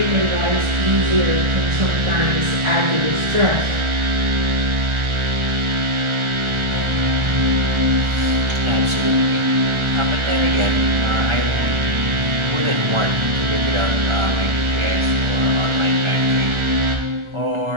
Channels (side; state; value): left; late; 1.4 ms